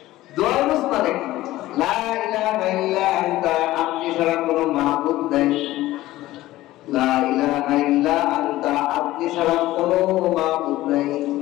দোয়া ইউজ মানে কি? লা ইলাহা ইল্লা আনতা, আপনি ছাড়া কোনো মাবুদ নাই। লা ইলাহা ইল্লা আনতা, আপনি ছাড়া কোনো মাবুদ নাই।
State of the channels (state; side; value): quieter; right; 16.3 dB